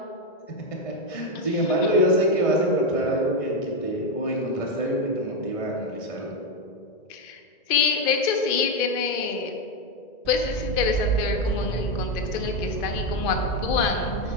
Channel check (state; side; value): late; right; 2.5 ms